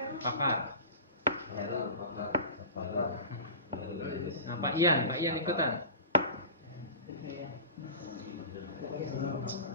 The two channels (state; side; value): inverted; both; correlation -0.34